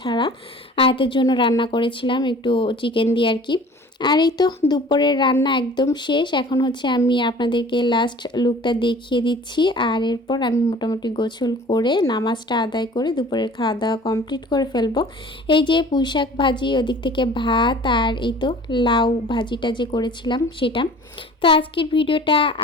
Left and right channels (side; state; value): both; normal; correlation 0.46